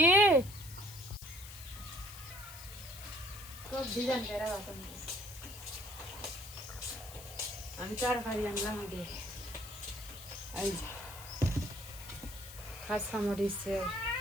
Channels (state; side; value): noise; left; hiss, 14 dB below the sound